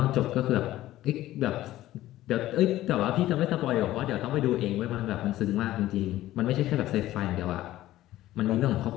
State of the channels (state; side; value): quieter; right; 15.0 dB